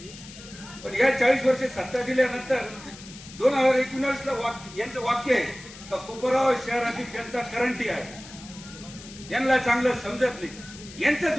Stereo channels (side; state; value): left; noise; hiss, 17 dB below the sound